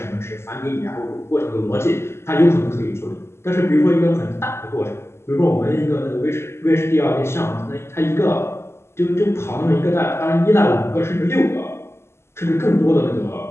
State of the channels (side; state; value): right; late; 0.12 ms